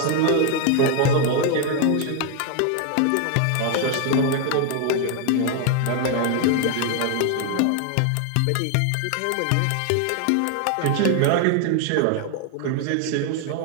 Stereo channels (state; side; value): different; both; correlation 0.00